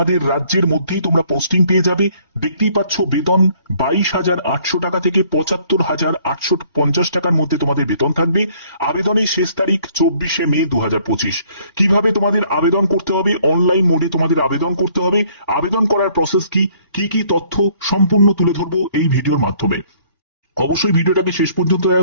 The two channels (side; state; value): both; inverted; correlation -0.61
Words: রাজ্যের মধ্যেই তোমরা পোস্টিং পেয়ে যাবে। দেখতেই পাচ্ছ বেতন 22,800 টাকা থেকে 75,850 টাকার মধ্যে তোমাদের বেতন থাকবে। আবেদনের শেষ তারিখ 24শে মে 2025। কিভাবে তোমাদের আবেদন করতে হবে? অনলাইন মোডে তোমাদের আবেদন করতে হবে। আবেদন করার প্রসেস কি কি তথ্য সম্পূর্ণ তুলে ধরবো এই ভিডিওর মাধ্যমে। অবশ্যই ভিডিওটাকে শেষ পর্যন্ত